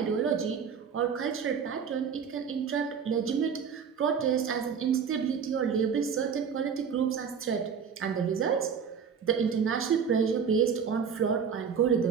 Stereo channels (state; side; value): quieter; left; 6.8 dB